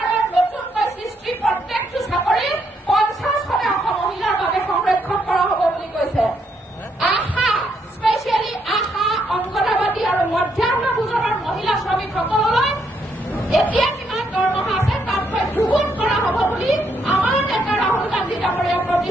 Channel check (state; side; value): normal; both; correlation 0.75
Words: নতুনকৈ সৃষ্টি প্ৰত্যেকটো চাকৰি 50% মহিলাৰ বাবে সংৰক্ষণ কৰা হ'ব বুলি কৈছে। আশা, স্পেচিয়েলি আশা, অংগনবাদী আৰু মধ্যাহ্ন ভোজনৰ মহিলা শ্ৰমিকসকললৈ এতিয়া কিমান দৰমহা আছে তাতকৈ দুগুণ কৰা হ'ব বুলি আমাৰ নেতা ৰাহুল গান্ধী ডাঙৰীয়াই